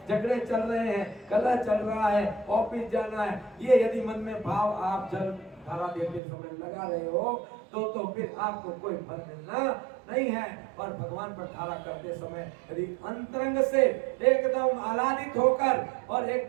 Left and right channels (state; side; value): drops out; left; at 6.2 s